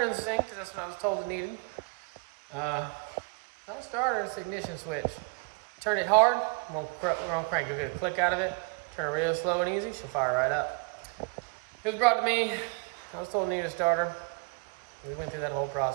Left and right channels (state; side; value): quieter; left; 32.1 dB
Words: in the sink because that's what I was told it needed. Not a starter, it's the ignition switch. Turn it hard, won't crank. You'll get a click out of it. Turn it real slow and easy, she'll fire right up. It was brought to me. I was told it needed a starter. We went through that whole